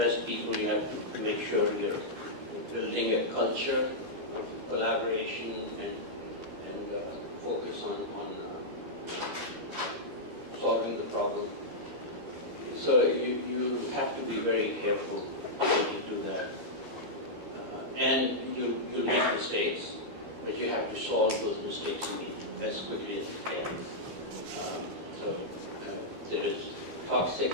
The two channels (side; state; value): left; late; 13 ms